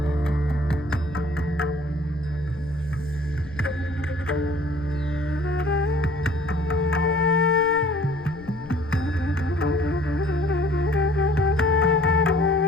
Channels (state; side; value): noise; left; rumble, 18 dB below the sound